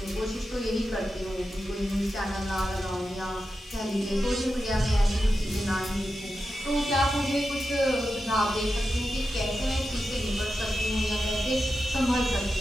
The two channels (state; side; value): normal; both; correlation 0.90